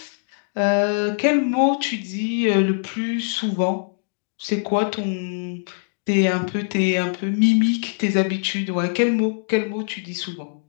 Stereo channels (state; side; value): silent; right; digital silence